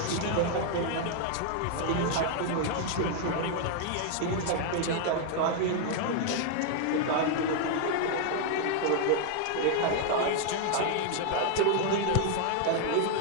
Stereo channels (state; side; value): different; both; correlation 0.00